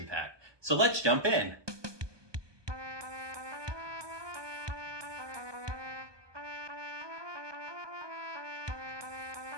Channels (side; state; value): left; late; 1.2 ms